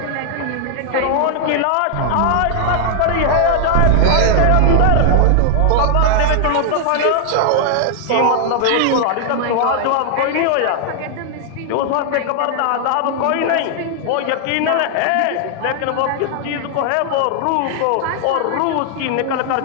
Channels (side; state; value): both; different; correlation 0.00